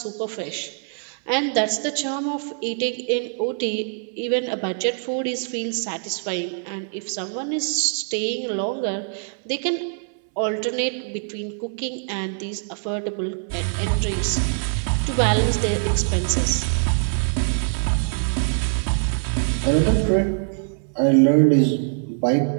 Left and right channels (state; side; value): silent; left; 61 dB below the other